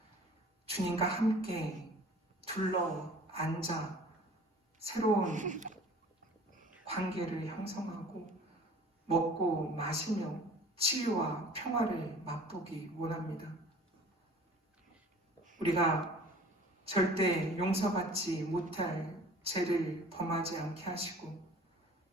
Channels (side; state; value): both; normal; correlation 0.47